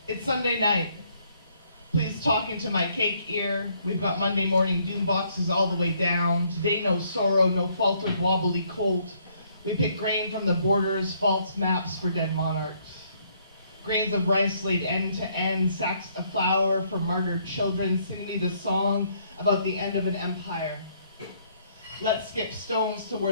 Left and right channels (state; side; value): inverted; both; correlation -0.68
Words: It's Sunday night. Please talk into my cake ear. We've got Monday morning doom boxes all the way down. Today no sorrow, no faltered wobbly colt. We pick grain from the borders, false maps for dead monarchs. Grains of rice laid end to end, sacks of flour for martyred children. Sing me the song about the end of an empire. Let's skip stones